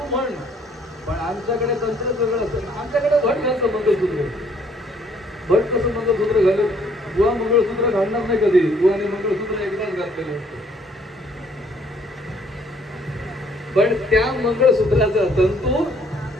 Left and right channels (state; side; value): normal; both; correlation 0.63